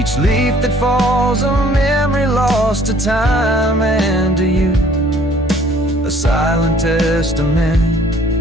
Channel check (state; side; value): normal; both; correlation 0.57